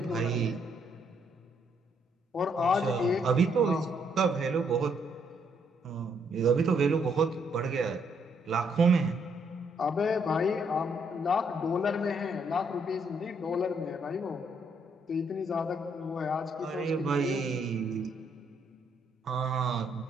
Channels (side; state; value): both; normal; correlation 0.72